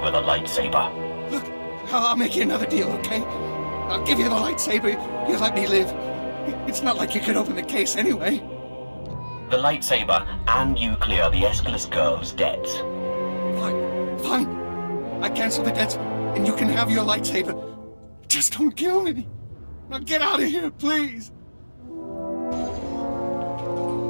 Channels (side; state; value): both; inverted; correlation -1.00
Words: the lightsaber. Look, I'll make you another deal, okay? I'll give you the lightsaber, you let me live. It's not like you could open the case anyway. The lightsaber, and you clear the Escalus girl's debts. Fine. I cancel the debts, and you can have your lightsaber. Just don't kill me. Now get out of here, please.